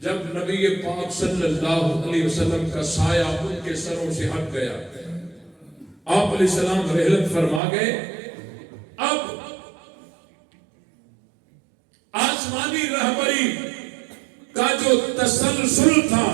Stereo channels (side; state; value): left; drops out; at 7.6 s